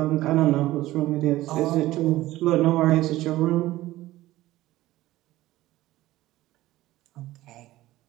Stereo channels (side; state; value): left; quieter; 16.4 dB